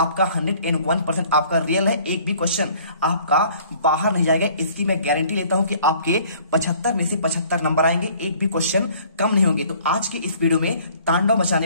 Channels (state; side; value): inverted; both; correlation -0.55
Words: 101% आपका रियल है। एक भी क्वेश्चन आपका बाहर नहीं जाएगा, इसकी मैं गारंटी लेता हूँ कि आपके 75 में से 75 नंबर आएंगे, एक भी क्वेश्चन कम नहीं होंगे। तो आज के इस वीडियो में तांडव